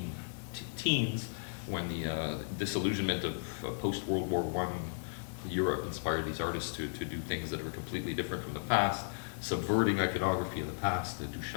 when the disillusionment of post-World War I Europe inspired these artists to do things that were completely different from the past, subverting iconography of the past, the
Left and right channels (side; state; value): right; silent; 54 dB below the other